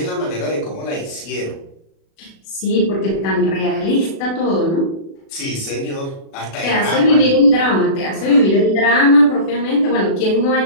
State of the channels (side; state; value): right; late; 36 ms